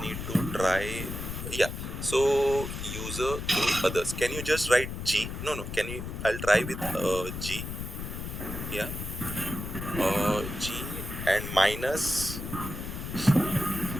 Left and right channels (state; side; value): noise; left; rumble, 7 dB below the sound